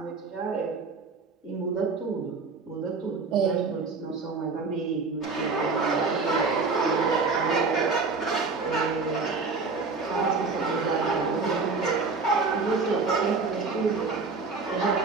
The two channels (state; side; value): quieter; left; 4.3 dB